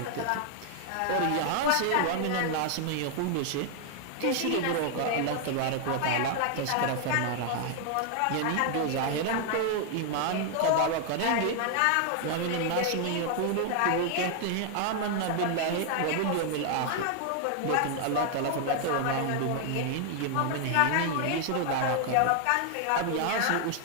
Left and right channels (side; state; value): both; different; correlation 0.00